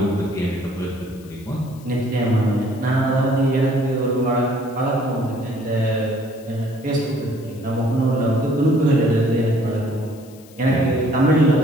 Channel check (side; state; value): left; noise; hiss, 25 dB below the sound